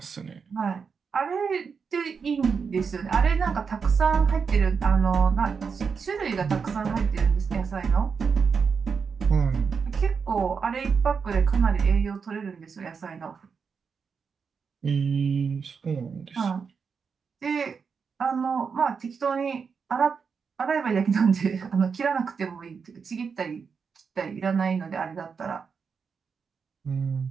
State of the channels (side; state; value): left; quieter; 5.8 dB